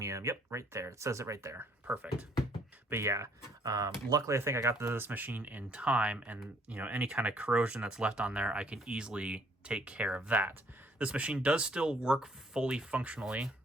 Yep, right there. It says it right there. Perfect. But yeah, luckily I think I got this machine in time, and you know, any kind of corrosion that's left on there, I can easily take care of that. This machine does still work fully functionally,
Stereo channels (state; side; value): normal; both; correlation 0.64